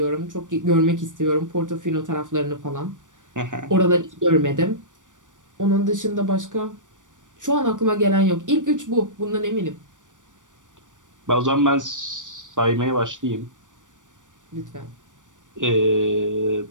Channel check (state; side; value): late; left; 0.87 ms